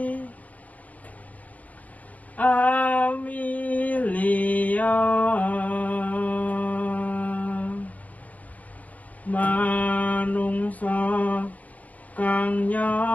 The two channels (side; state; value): right; late; 0.074 ms